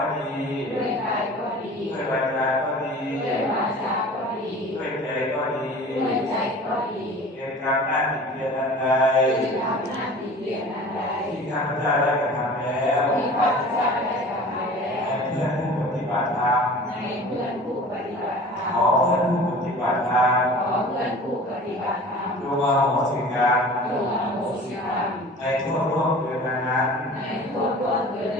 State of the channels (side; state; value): both; normal; correlation 0.41